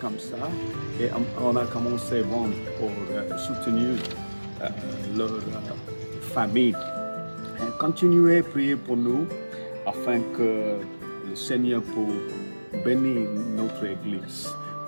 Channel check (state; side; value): inverted; both; correlation -1.00